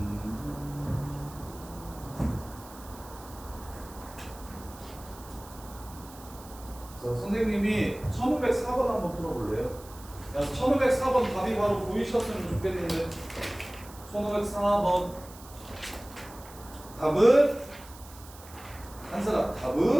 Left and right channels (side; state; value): right; noise; hiss, 19 dB below the sound